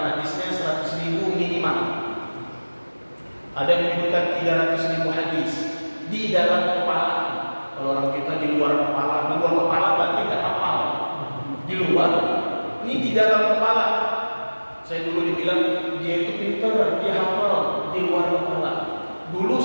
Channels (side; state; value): both; inverted; correlation -1.00